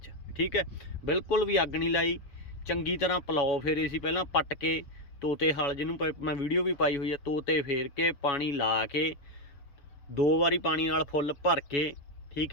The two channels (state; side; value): late; right; 7.1 ms